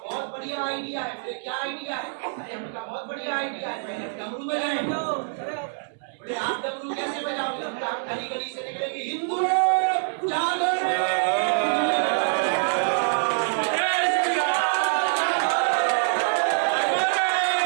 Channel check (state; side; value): silent; left; 61 dB below the other